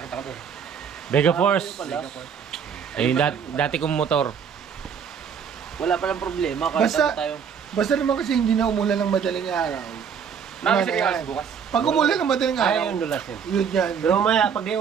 ko doon. Vega Force. Ayun, dati kong motor. Wala palang problema. Basta naman kasi hindi na umulan ng madaling araw. Nakasirikas bukas. Pag umulan ng madaling araw, yun yan. Pero mamaya, pag di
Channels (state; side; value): quieter; left; 7.1 dB